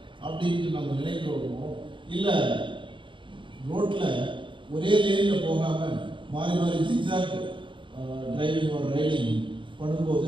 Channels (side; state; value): left; late; 0.24 ms